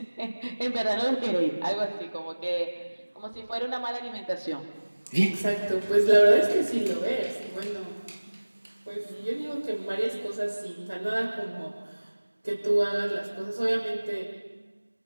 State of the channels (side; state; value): both; inverted; correlation -1.00